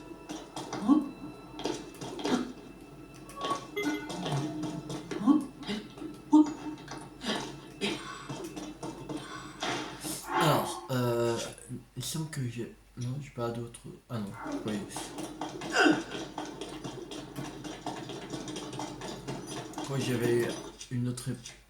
Alors, il semble que j'ai... Non, j'ai pas d'autres... Ah non, oui. Oui, j'avais une autre...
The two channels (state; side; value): identical; both; correlation 1.00